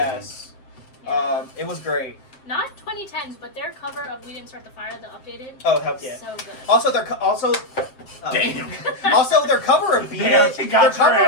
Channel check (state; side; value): late; right; 7.7 ms